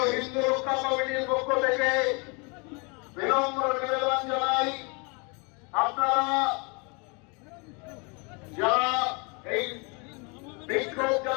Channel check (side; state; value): right; quieter; 31.7 dB